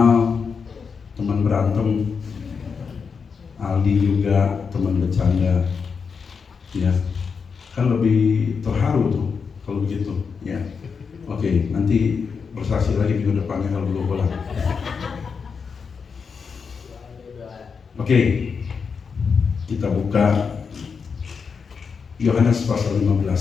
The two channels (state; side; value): quieter; right; 5.7 dB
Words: teman berantem, Aldi juga teman bercanda. Ya, kan lebih terharu tuh kalau begitu. Ya, oke, nanti bersaksi lagi minggu depannya kalau belum pulang. Oke, kita buka Yohanes pasal